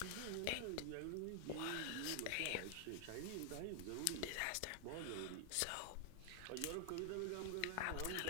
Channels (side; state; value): both; different; correlation 0.00